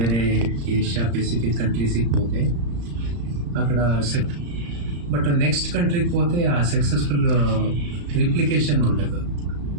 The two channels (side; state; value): left; late; 35 ms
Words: ఏషియా పెసిఫిక్ కంట్రీస్కి పోతే అక్కడ బట్ నెక్స్ట్ కంట్రీకి పోతే ఆ సక్సెస్ఫుల్ రిప్లికేషన్ ఉండదు.